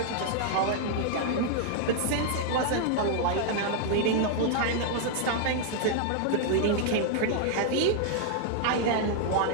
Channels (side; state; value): both; different; correlation 0.00